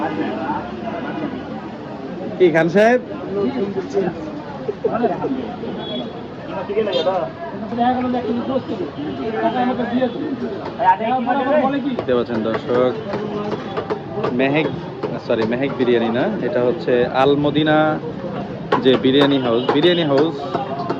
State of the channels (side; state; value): both; identical; correlation 1.00